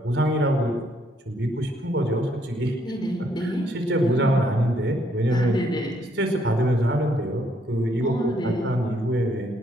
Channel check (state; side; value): normal; both; correlation 0.70